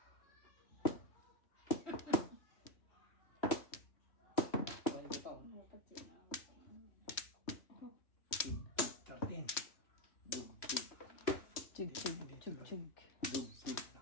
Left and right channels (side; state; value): right; late; 3.1 ms